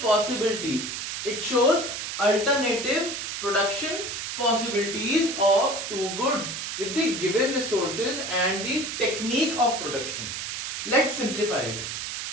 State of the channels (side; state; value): right; noise; hiss, 5 dB below the sound